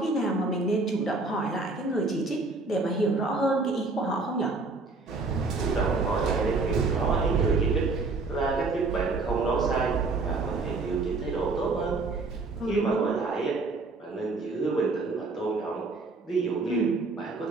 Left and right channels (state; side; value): quieter; left; 3.6 dB